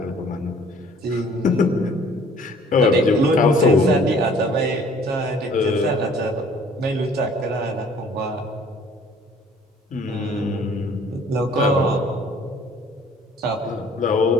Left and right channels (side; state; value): both; normal; correlation 0.55